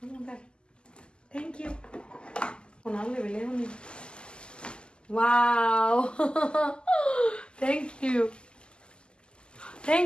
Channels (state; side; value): late; right; 0.049 ms